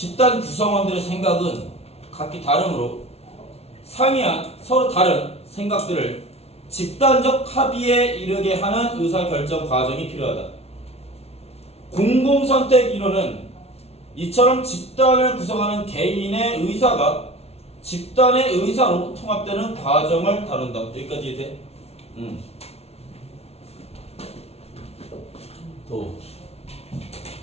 구성원들의 생각은 각기 다르므로 상이한 서로 다른 생각들을 집단적 합의에 이르게 하는 의사결정 과정이 필요하다. 공공선택 이론은 이처럼 집단을 구성하는 개인의 의사가 집단의 의사로 통합되는 과정을 다룬다. 여기까지 이해돼? 도.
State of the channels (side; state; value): right; late; 0.30 ms